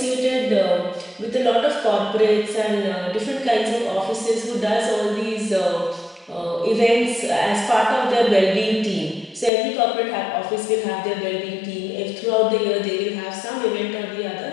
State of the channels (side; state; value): right; drops out; at 9.5 s